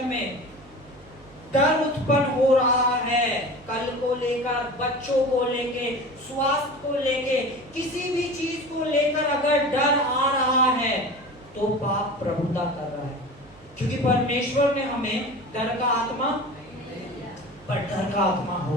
में, डर उत्पन्न हो रहा है कल को लेकर, बच्चों को लेके, स्वास्थ्य को लेके, किसी भी चीज को लेकर अगर डर आ रहा है तो पाप प्रभुता कर रहा है। क्योंकि परमेश्वर ने हमें डर का आत्मा, पर डर का आत्मा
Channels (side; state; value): right; noise; hum, 26 dB below the sound